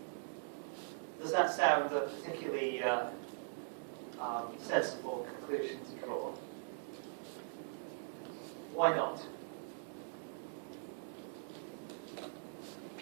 Does that sound a particularly sensible conclusion to draw? Why not?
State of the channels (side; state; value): left; silent; digital silence